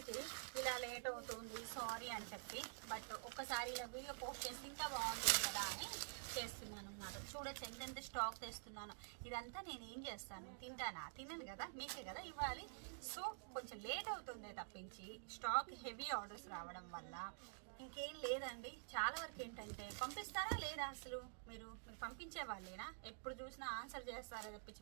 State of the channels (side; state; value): left; silent; digital silence